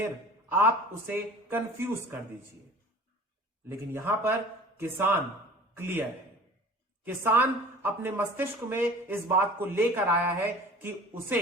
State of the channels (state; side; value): normal; both; correlation 0.44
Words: आप उसे कंफ्यूज कर दीजिए। लेकिन यहां पर किसान क्लियर है। किसान अपने मस्तिष्क में इस बात को लेकर आया है कि उसे